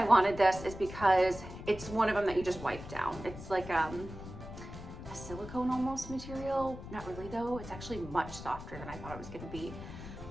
wanted this is because it's one of them that you just wipe down. It's like a silicone almost material. Not really though, it's actually much softer than I thought it was gonna be.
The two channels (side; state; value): left; noise; rumble, 12 dB below the sound